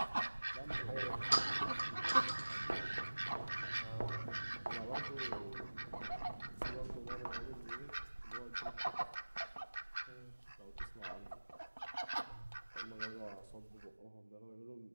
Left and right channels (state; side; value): inverted; both; correlation -1.00